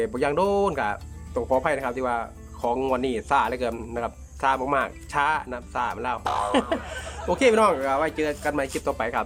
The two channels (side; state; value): both; identical; correlation 1.00